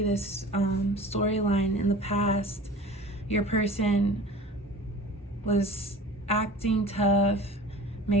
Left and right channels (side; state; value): both; normal; correlation 0.41